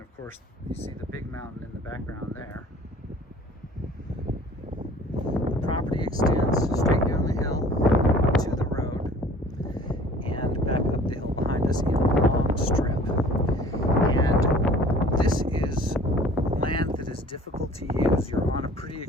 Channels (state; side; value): normal; both; correlation 0.49